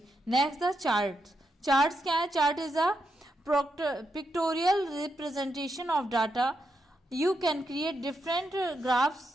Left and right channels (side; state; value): both; normal; correlation 0.83